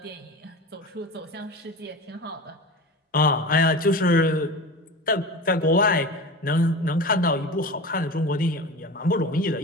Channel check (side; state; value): both; normal; correlation 0.31